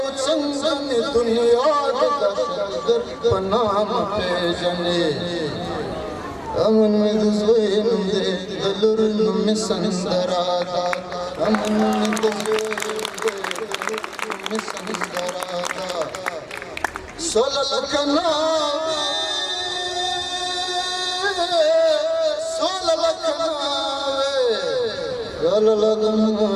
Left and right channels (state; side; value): identical; both; correlation 1.00